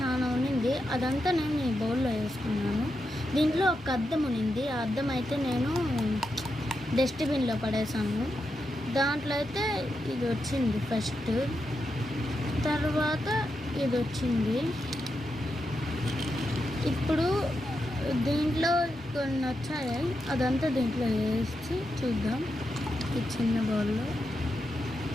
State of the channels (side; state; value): both; normal; correlation 0.86